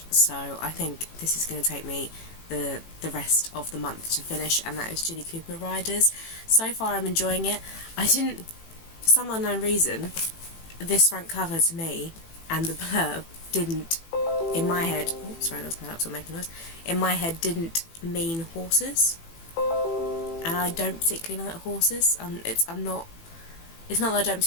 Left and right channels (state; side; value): late; right; 18 ms